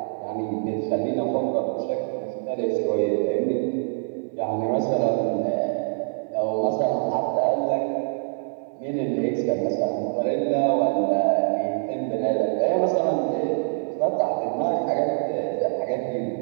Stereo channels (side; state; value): left; silent; 62 dB below the other